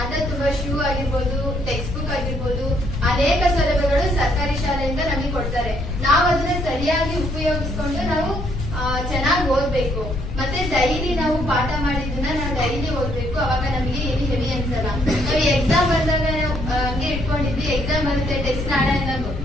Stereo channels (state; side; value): noise; left; rumble, 5 dB below the sound